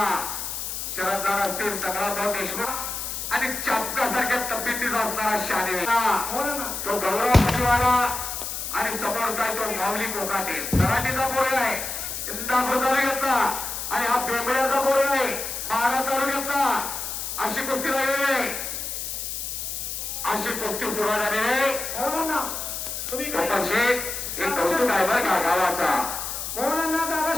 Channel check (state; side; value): noise; left; hiss, 5 dB below the sound